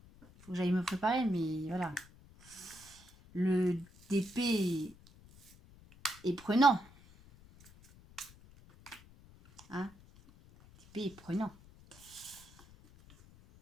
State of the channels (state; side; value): noise; left; rumble, 23 dB below the sound